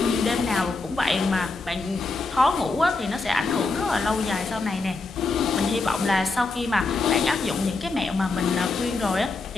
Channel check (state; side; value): quieter; right; 3.6 dB